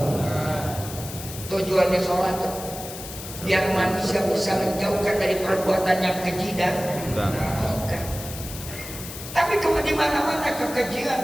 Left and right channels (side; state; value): left; noise; hiss, 11 dB below the sound